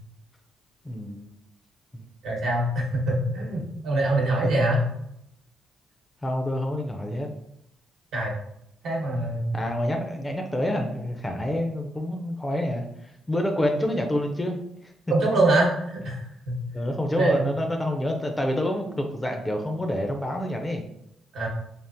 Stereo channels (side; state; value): both; normal; correlation 0.80